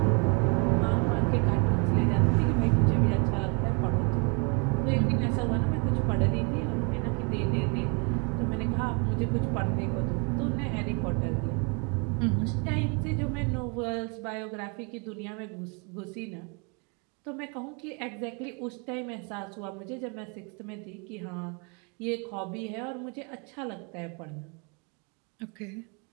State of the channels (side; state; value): left; quieter; 34.2 dB